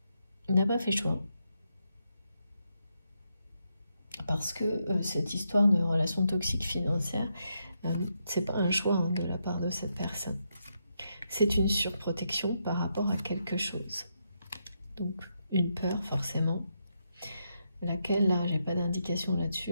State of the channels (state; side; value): inverted; both; correlation -0.81